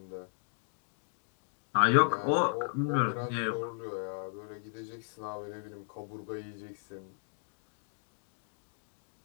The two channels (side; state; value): right; silent; digital silence